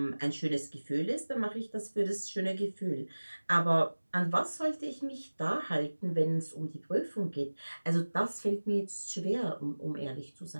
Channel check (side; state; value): both; inverted; correlation -1.00